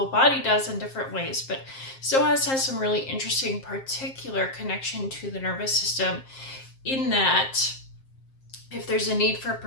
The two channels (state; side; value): late; right; 7.5 ms